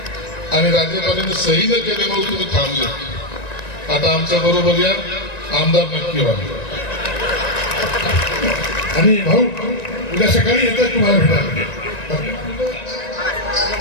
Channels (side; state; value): right; late; 1.9 ms